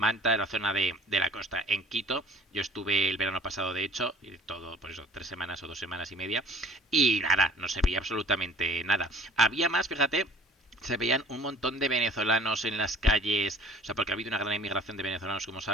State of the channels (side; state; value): both; normal; correlation 0.50